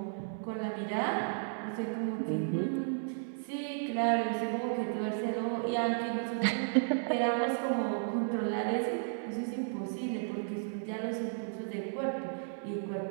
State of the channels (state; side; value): silent; left; digital silence